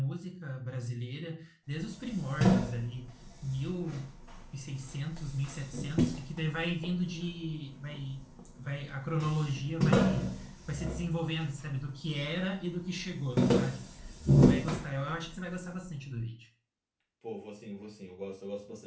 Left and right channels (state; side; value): identical; both; correlation 1.00